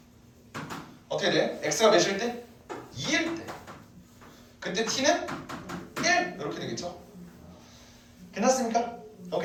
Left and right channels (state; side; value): identical; both; correlation 1.00